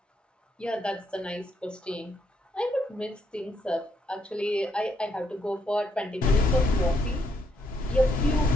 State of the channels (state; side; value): normal; both; correlation 0.74